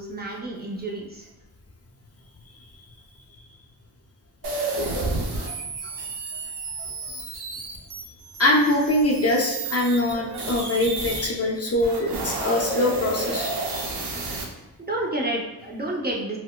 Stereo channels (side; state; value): both; normal; correlation 0.12